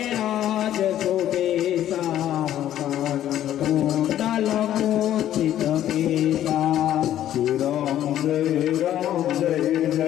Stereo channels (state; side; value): quieter; right; 11.9 dB